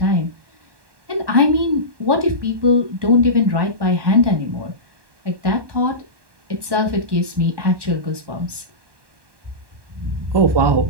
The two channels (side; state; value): left; late; 1.1 ms